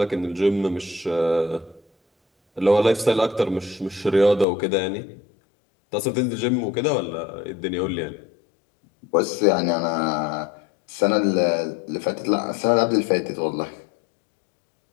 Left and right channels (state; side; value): drops out; right; at 4.5 s